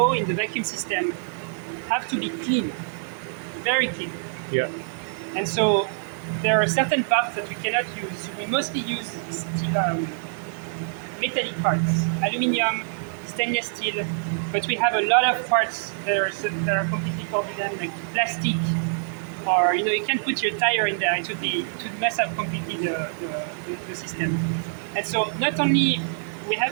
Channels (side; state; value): left; silent; digital silence